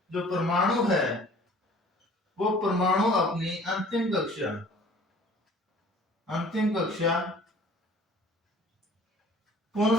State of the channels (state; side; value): normal; both; correlation 0.50